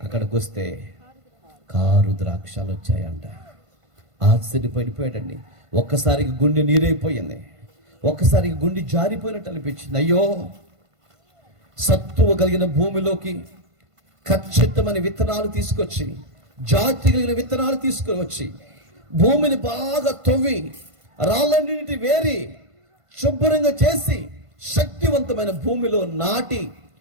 అక్కడికి వస్తే కారు ద్రాక్షాలు వచ్చాయంట. ఆశ్చర్యపడిపోయాడండి. ఒక్కసారికి గుండె నీరైపోయింది, ఒక్కసారికి గుండె జారిపోయినట్టు అనిపించింది. అయ్యో, సత్తువ కలిగిన భూమిలోకి ఖచ్చితమైన విత్తనాలు తీసుకొచ్చి, జాతి కలిగిన విత్తనాలు తీసుకువచ్చి భూమిని బాగా తవ్వి రాళ్ళన్నింటి వేరి శుభ్రంగా చేసి శక్తివంతమైన భూమిలో నాటి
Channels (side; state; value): left; late; 1.5 ms